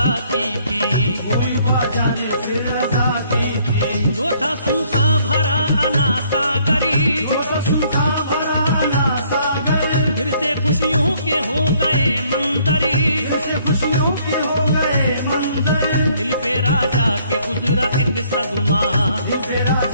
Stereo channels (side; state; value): both; inverted; correlation -0.64